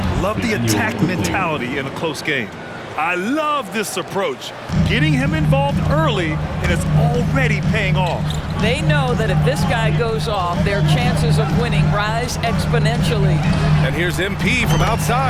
Love the attack mentality in a close game. I love this approach. Getting him involved early, and it's already paying off. They know that if this guy goes off, their chances of winning rise exponentially. And here's MP from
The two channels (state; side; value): identical; both; correlation 1.00